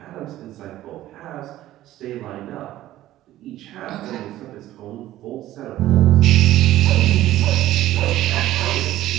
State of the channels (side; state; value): left; quieter; 14.4 dB